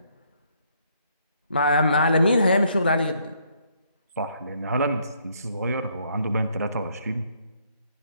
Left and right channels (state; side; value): inverted; both; correlation -0.70